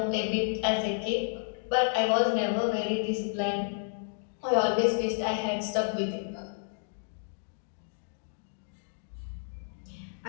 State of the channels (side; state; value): right; silent; digital silence